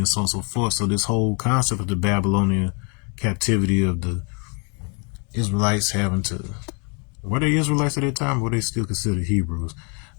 so on and so forth, so this whole concept of the Babylonian captivity of the Israelites having to, were they Israelites at that time, or were they still considered Hebrews?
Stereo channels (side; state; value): right; quieter; 35.8 dB